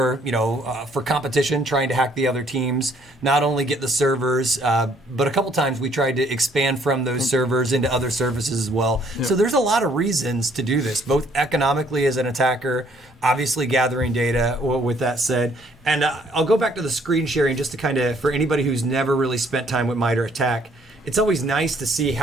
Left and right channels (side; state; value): both; normal; correlation 0.64